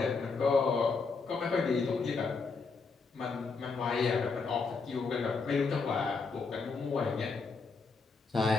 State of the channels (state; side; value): quieter; right; 4.6 dB